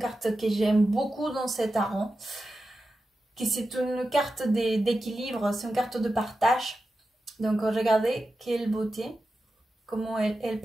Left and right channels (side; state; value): both; normal; correlation 0.91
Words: que j'aime beaucoup dans cet tarot. C'est une carte d'équilibre, c'est une carte de partage. Donc regardez, quelle beauté. comment elle